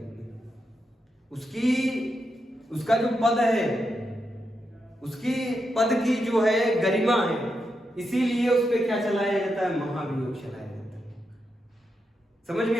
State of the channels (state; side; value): normal; both; correlation 0.85